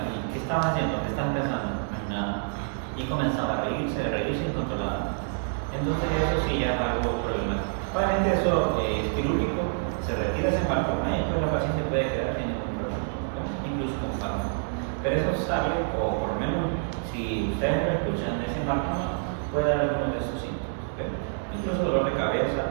¿qué estaban haciendo? ¿Qué estaban pensando? Nada. Y comenzaba a reírse incontrolable. Entonces eso sí ya es algo problemático. Obviamente eso es quirúrgico, se retira ese hematoma y después la paciente puede quedar sin ningún problema, ¿no? Incluso con fármaco. Pero eso sale, o por lo menos si ustedes lo escuchan, ese hematoma puede dar algunos de esos síntomas. ¿Okay? Incluso dolor de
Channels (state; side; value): silent; left; digital silence